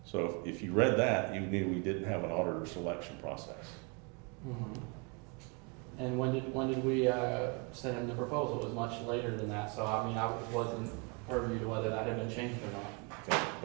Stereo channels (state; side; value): quieter; left; 32.4 dB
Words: So if you read that, you knew we didn't have an auditor selection process. And when did we send him the proposal? It was much later than that, so I mean, I wasn't privy to whether that had been changed or not.